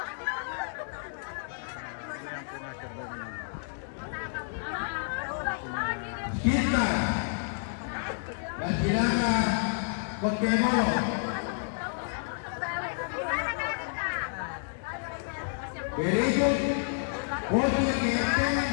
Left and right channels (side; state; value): right; silent; digital silence